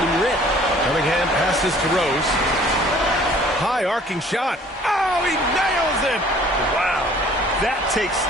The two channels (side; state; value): both; normal; correlation 0.53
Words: him rip. Cunningham passes to Rose. High arcing shot. Oh, he nails it. Wow. That takes